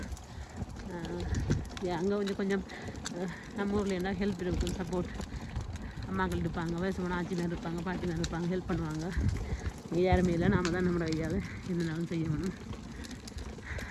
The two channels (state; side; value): identical; both; correlation 1.00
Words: அங்கே கொஞ்சம் நம்ம ஊரில் என்ன ஹெல்ப் இருக்கும், சப்போர்ட் அம்மாக்கள் இருப்பாங்க, வயசுமான ஆட்சிமார் இருப்பாங்க, பாட்டிமார் இருப்பாங்க, ஹெல்ப் பண்ணுவாங்க. இங்கே யாருமே இல்லை, நாம் தான் நம்மளோட கையால் என்னனாலும் செய்யணும்.